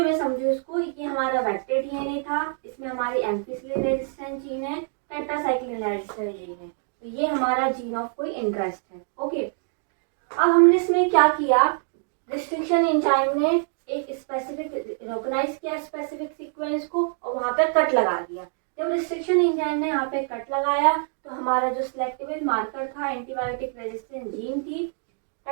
में समझो इसको, ये हमारा वेक्टर डीएनए था, इसमें हमारी एम्फिसिलिन रेजिस्टेंस जीन है, टेट्रासाइक्लिन रेजिस्टेंस जीन है, तो ये हमारा जीन ऑफ कोई इंटरेस्ट है। ओके, अब हमने इसमें क्या किया, रिस्ट्रिक्शन एंजाइम ने एक स्पेसिफिक रिकॉग्नाइज किया स्पेसिफिक सीक्वेंस को और वहां पे कट लगा दिया। जब रिस्ट्रिक्शन एंजाइम ने यहाँ पे कट लगाया तो हमारा जो सिलेक्टिव मार्कर था एंटीबायोटिक रेजिस्टेंस जीन थी,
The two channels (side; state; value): left; silent; 58 dB below the other